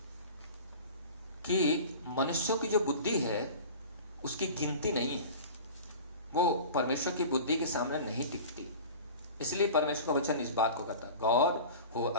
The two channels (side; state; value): both; inverted; correlation -0.37